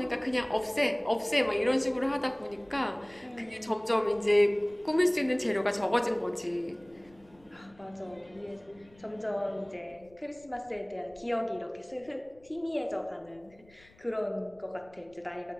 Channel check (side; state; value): left; noise; rumble, 28 dB below the sound